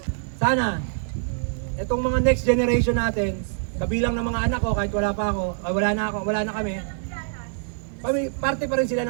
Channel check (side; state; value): left; silent; digital silence